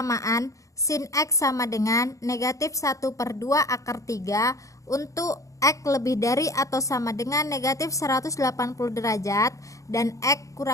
sin X sama dengan negatif 1/2 akar 3 untuk X lebih dari atau sama dengan negatif 180 derajat dan X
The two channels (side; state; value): right; late; 0.16 ms